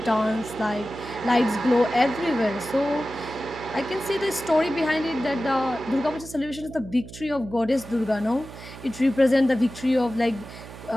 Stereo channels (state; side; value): noise; right; hum, 15 dB below the sound